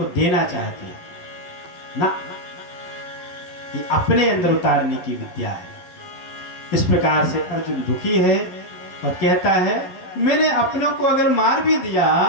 देना चाहते हैं ना। ये अपने अंदर उतारने की विद्या है। इस प्रकार से अर्जुन दुखी है और कहता है, मैंने अपनों को अगर मार भी दिया,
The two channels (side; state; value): right; late; 12 ms